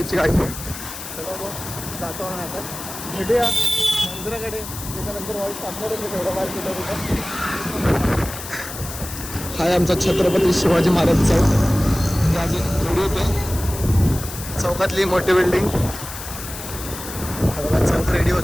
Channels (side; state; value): left; noise; hiss, 10 dB below the sound